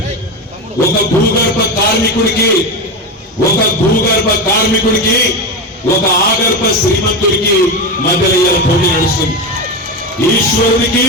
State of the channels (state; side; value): normal; both; correlation 0.17